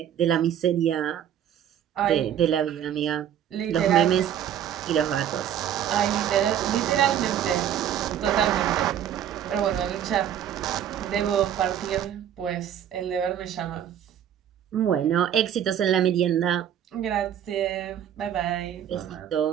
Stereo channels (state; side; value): quieter; left; 10.0 dB